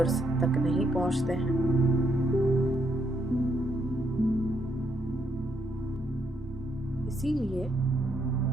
तक नहीं पहुंचते हैं। इसीलिए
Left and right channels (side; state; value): both; normal; correlation 0.76